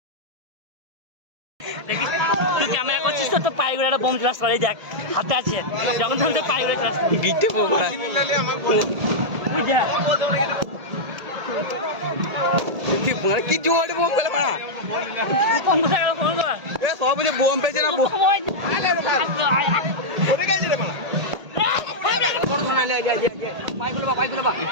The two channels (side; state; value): left; late; 1.8 ms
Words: দেখিস তুই ক্যামেরা করছিস তো পায়ে করে একটা বোম ক্লাস করে দেখ হাতে আছে যখন তখন তো পায়ে করে ক্লাস গিটে পোকা কি জোরে বোম পেলে মারা ফোন কর এ সব বুঝে বোম পেয়েছে না